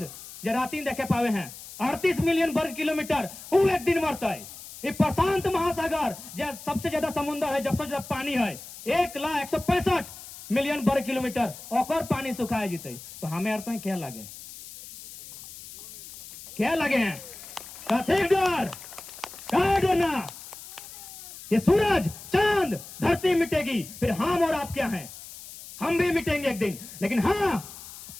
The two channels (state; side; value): noise; left; hiss, 15 dB below the sound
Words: जो राती देखे पावे हैं 38 मिलियन वर्ग किलोमीटर, वो एक दिन मरता है। ये प्रशांत महासागर जो सबसे ज्यादा समुद्र है, सबसे ज्यादा पानी है, 1,165 मिलियन वर्ग किलोमीटर, और पानी सुखाए जीते। तो हमें अर्थ क्या लगे, क्या लगे हैं, क्या डरना, ये सूरज, चांद, धरती मिटेगी, फिर हम और आप क्या हैं, हम भी मिटेंगे एक दिन। लेकिन हाँ,